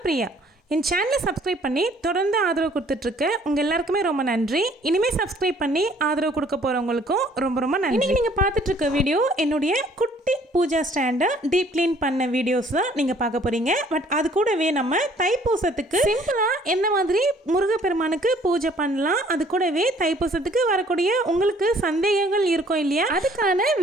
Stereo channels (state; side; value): normal; both; correlation 0.58